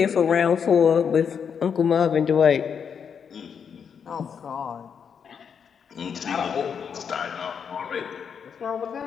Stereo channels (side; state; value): right; quieter; 7.0 dB